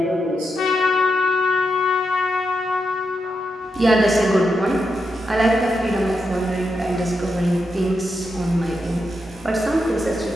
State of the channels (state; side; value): normal; both; correlation 0.85